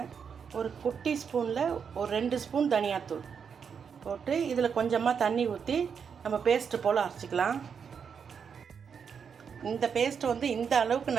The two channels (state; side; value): quieter; left; 6.7 dB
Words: ஒரு குட்டி ஸ்பூனில் ஒரு 2 ஸ்பூன் தனியாத்தூள் போட்டு இதில் கொஞ்சமாக தண்ணி ஊற்றி நம்ம பேஸ்ட்டு போல் அரைச்சிக்கலாம். இந்த பேஸ்ட்டை வந்து இந்த அளவுக்கு